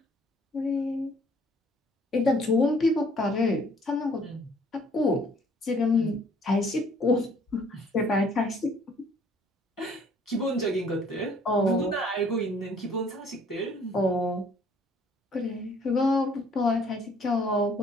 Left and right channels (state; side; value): normal; both; correlation 0.59